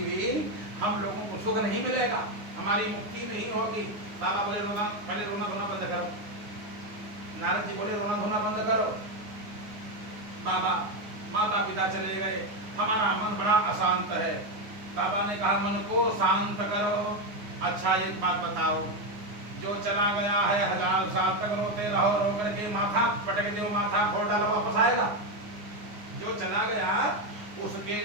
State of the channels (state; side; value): late; left; 9.7 ms